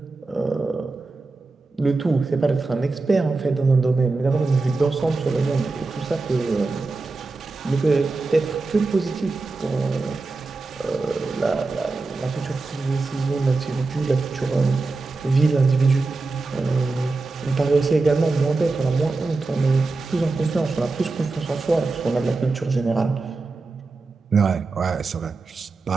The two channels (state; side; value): quieter; left; 3.7 dB